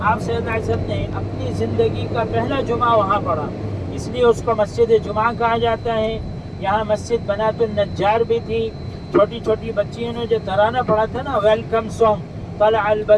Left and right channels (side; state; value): both; identical; correlation 1.00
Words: آپ صلی اللہ علیہ وسلم نے اپنی زندگی کا پہلا جمعہ وہاں پڑھا، اس لیے اس کو مسجد جمعہ کہا جاتا ہے۔ یہاں مسجد بنات النجار بھی تھی۔ چھوٹی چھوٹی بچیوں نے جو ترانہ پڑھا تھا نا، ویلکم سانگ، طلع